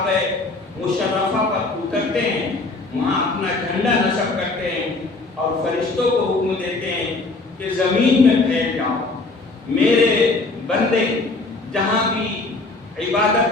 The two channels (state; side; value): quieter; right; 3.4 dB